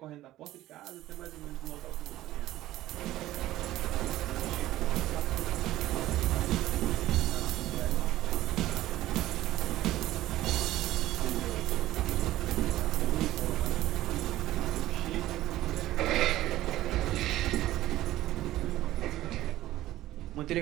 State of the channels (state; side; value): quieter; left; 15.2 dB